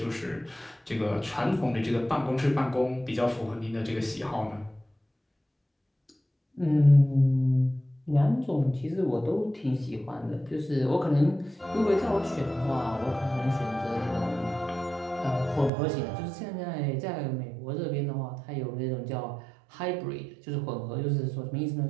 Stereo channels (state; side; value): drops out; left; at 15.7 s